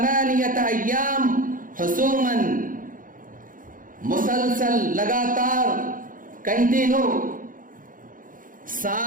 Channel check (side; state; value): left; late; 0.40 ms